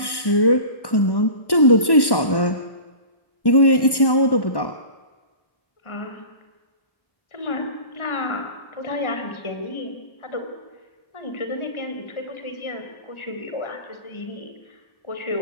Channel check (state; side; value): late; right; 1.1 ms